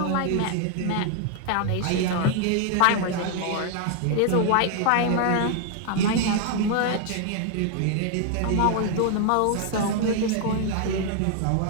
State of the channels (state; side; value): different; both; correlation 0.00